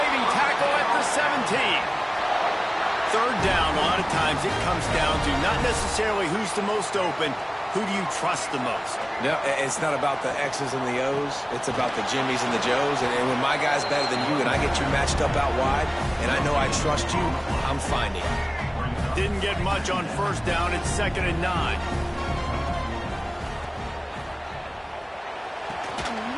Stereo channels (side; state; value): both; identical; correlation 1.00